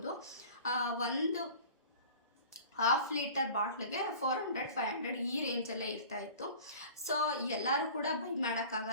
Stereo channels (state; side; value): inverted; both; correlation -0.42